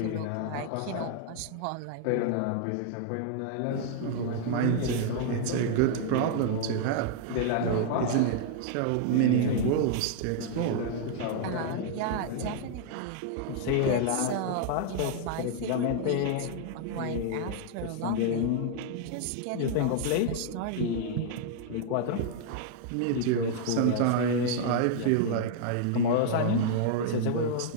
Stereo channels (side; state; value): both; different; correlation 0.00